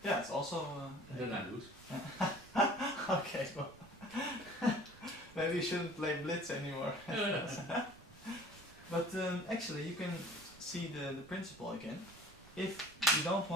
Yeah, it's also. And then I lose. Okay, well, maybe you shouldn't play Blitz anymore. But actually, you can see the principle again. If you don't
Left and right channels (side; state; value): right; noise; rumble, 22 dB below the sound